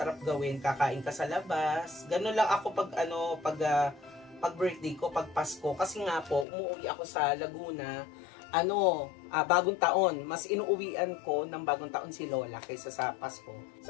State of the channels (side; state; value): right; drops out; at 6.5 s